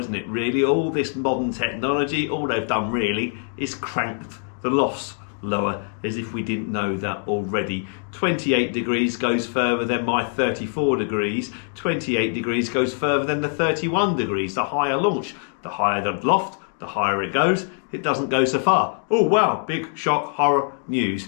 it? Really, all this modern technology, all they've done really is cranked the lofts lower, as if we didn't know that already. 28 degrees goes further than my 34 degrees. 28 degrees goes further than the 31 degrees. The higher launch, the higher the loft, the higher it goes, it doesn't go so far. Oh wow, big shock, horror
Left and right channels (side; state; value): right; silent; 58 dB below the other